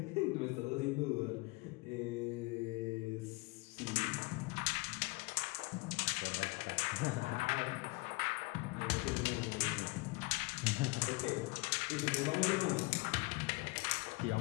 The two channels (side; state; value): right; quieter; 25.2 dB